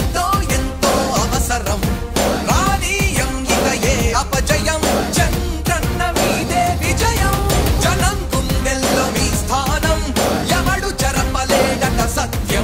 ఎంతో అవసరం రానీయం ఇక ఏ అపజయం చంద్రన్న మీదే విజయం జనం గుండెల్లో మీ స్థానం ఎవడు చెరపలేడట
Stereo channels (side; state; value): both; identical; correlation 1.00